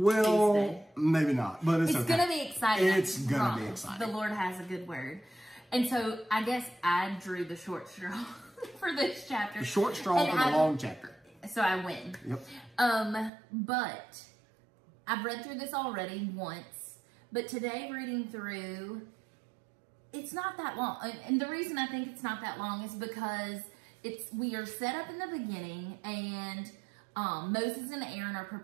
Maybe not, but it's okay. It's going to be exciting. It's going to be exciting. The Lord has a good word. And so I guess I drew the short straw for this chapter. The short straw for the long chapter. So I win. Yep. But I've read through this already once, but today reading through, it's not that long. And the reason I think it's not that long is because we are set up in the beginning, and Moses and Aaron are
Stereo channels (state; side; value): drops out; left; at 13.3 s